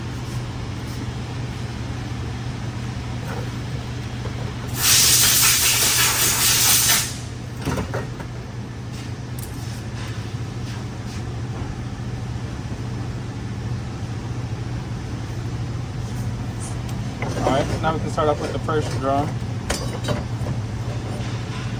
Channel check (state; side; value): identical; both; correlation 1.00